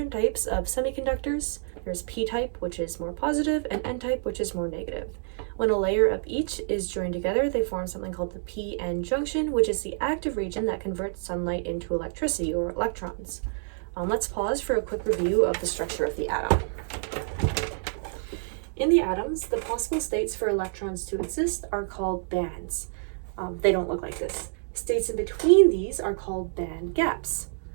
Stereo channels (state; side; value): silent; left; digital silence